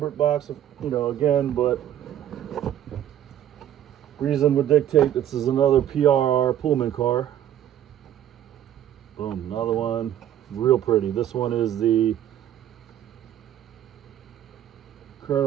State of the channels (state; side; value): quieter; left; 11.1 dB